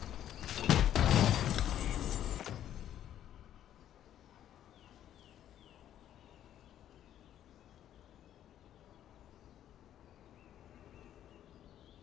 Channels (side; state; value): right; quieter; 11.1 dB